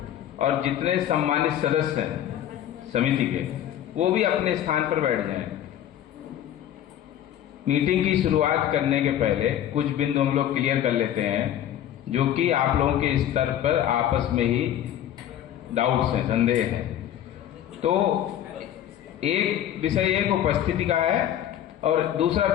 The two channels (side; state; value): right; quieter; 11.1 dB